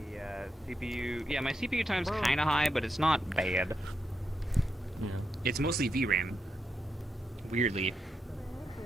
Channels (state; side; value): normal; both; correlation 0.84